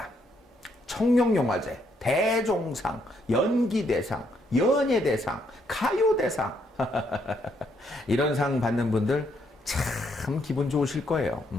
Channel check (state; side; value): normal; both; correlation 0.73